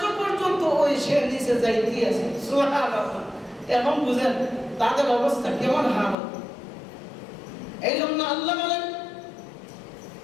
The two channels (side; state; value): right; drops out; at 6.2 s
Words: পর্যন্ত ওই সে নিচে যাইতেই আছে। সুবহানাল্লাহ। এখন বুঝেন তাদের অবস্থা কেমন হালত। এই জন্য আল্লাহ বলেন